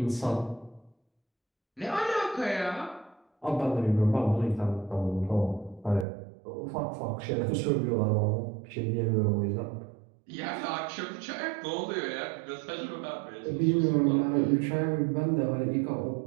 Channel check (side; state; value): left; drops out; at 6.1 s